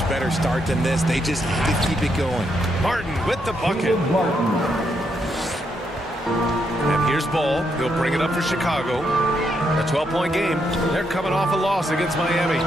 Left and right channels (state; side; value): normal; both; correlation 0.78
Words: better start than this. They just have to keep it going. Martin with the bucket. And here's Ball. He'll bring it up for Chicago. A 12-point game. They're coming off a loss against Miami.